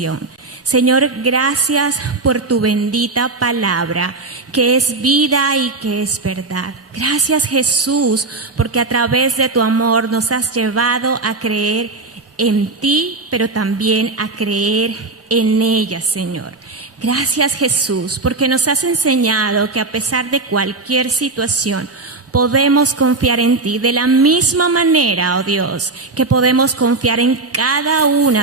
Señor, gracias por tu bendita palabra, que es vida y que es verdad. Gracias, Jesús, porque a través de tu amor nos has llevado a creer en ti, pero también a creer en ella, Señor. Gracias, Jesús, porque nos has enseñado que a pesar de cualquier situación, podemos confiar en ti de la misma manera, oh Dios, que podemos confiar en cada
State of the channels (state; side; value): quieter; left; 3.5 dB